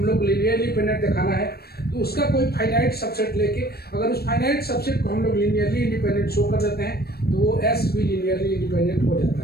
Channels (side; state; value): right; late; 0.46 ms